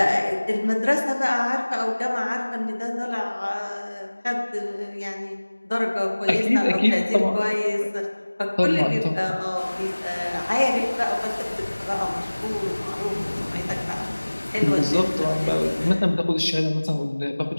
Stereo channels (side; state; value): both; inverted; correlation -1.00